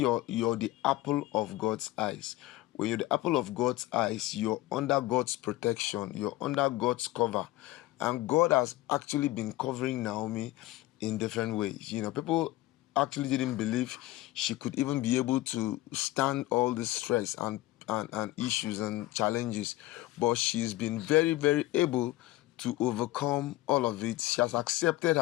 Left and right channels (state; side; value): quieter; right; 17.0 dB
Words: the apple of God's eyes. When you're the apple of God's eyes, you're under God's protection, you're under God's cover. And God has actually been covering Naomi in different ways. People actually didn't believe she could even be able to stand all this stress and issues and challenges. But she's been very, very able to overcome all of it. She has accepted